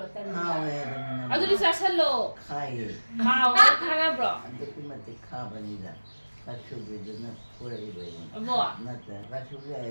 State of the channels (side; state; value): both; inverted; correlation -1.00